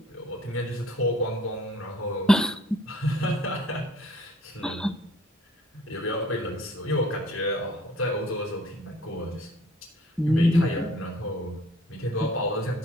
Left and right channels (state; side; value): normal; both; correlation 0.55